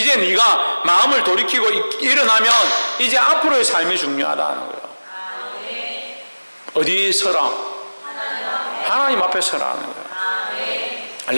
네가 마음을 돌이키고 일어나면 이제 앞으로의 삶이 중요하다는 거예요. 어디 서라? 하나님 앞에 서라는 거예요.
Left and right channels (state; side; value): inverted; both; correlation -1.00